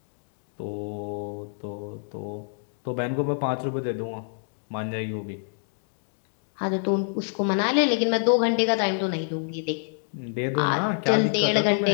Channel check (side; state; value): right; silent; digital silence